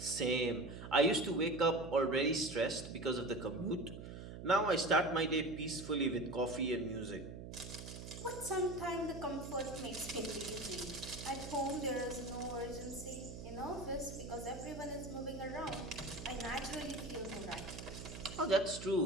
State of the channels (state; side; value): noise; right; hum, 10 dB below the sound